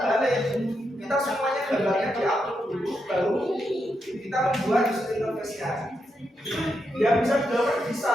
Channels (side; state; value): both; normal; correlation 0.83